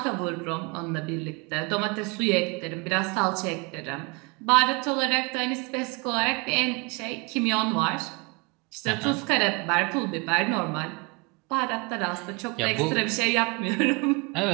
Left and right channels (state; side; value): quieter; left; 29.7 dB